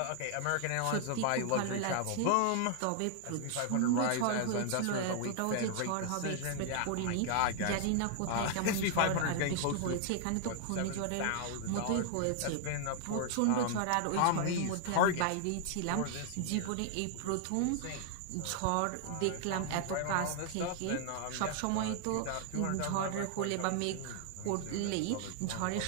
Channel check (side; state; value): both; different; correlation 0.00